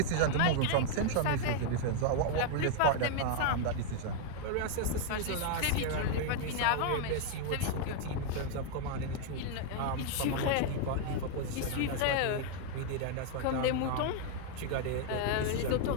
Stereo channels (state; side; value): different; both; correlation 0.00